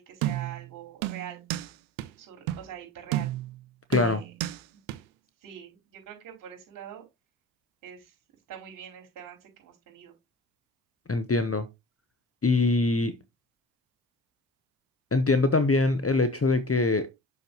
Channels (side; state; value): both; normal; correlation 0.39